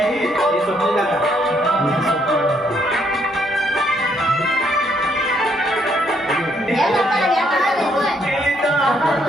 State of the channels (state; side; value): normal; both; correlation 0.71